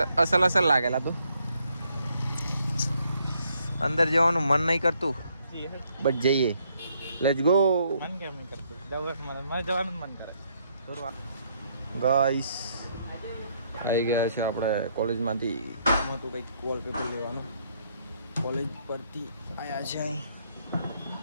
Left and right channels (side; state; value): both; inverted; correlation -0.71